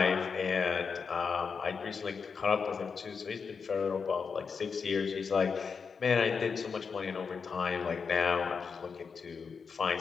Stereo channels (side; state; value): right; quieter; 5.6 dB